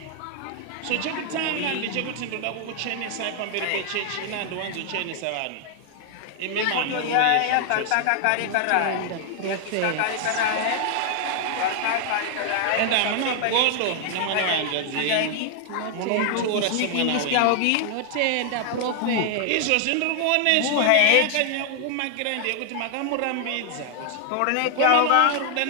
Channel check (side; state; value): both; different; correlation 0.00